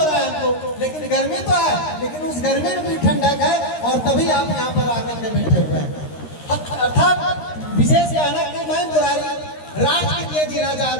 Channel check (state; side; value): late; right; 13 ms